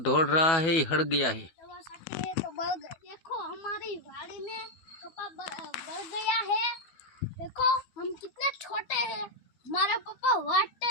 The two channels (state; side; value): late; right; 12 ms